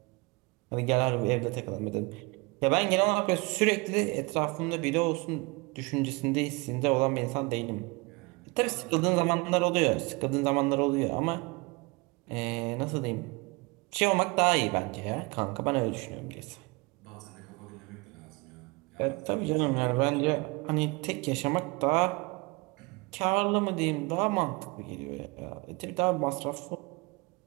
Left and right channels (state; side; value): quieter; left; 26.7 dB